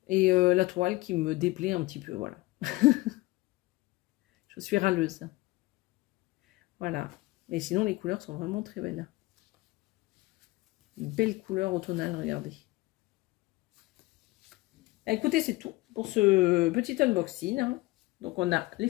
Et la toile qui me déplaît un petit peu. Voilà. Je suis râleuse. Voilà. Mais sinon, les couleurs sont vraiment très belles. Une belle couleur automnale, regardez. Écoutez, c'est tout pour ce petit unboxing. Hein. Donc, on a les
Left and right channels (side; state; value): right; quieter; 20.9 dB